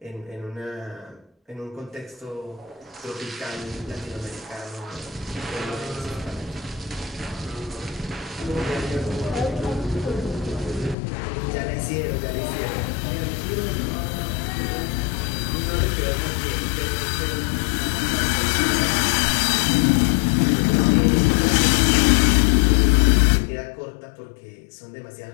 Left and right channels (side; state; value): right; drops out; at 11.0 s